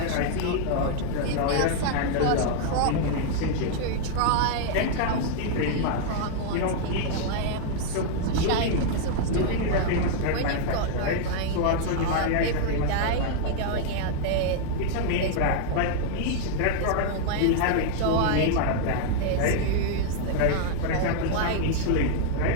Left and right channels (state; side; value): different; both; correlation 0.00